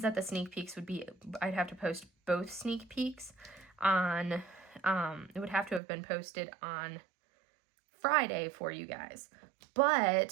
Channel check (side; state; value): left; drops out; at 5.8 s